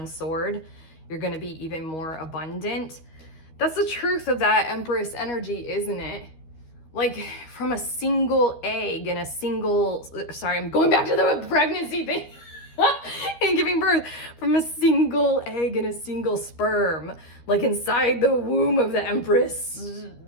sword, you're going to be even more abundant. That's the truth of that Empress energy, isn't it? Like from a single egg and I'm going back to the pregnancy thing and giving birth, from a single egg and a single sperm, like inside the womb of the Empress,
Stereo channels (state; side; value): late; right; 13 ms